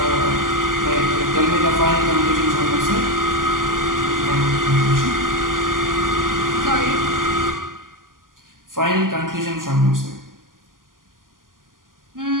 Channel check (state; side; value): late; left; 0.90 ms